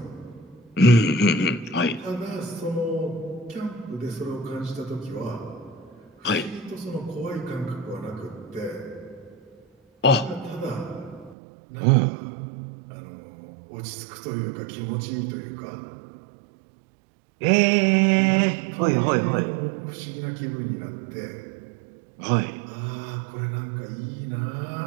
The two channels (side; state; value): left; drops out; at 11.4 s